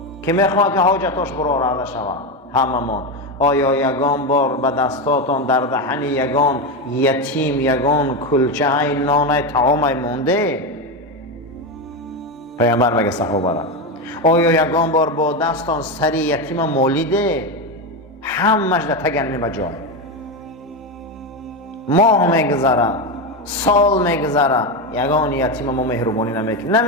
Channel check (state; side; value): normal; both; correlation 0.13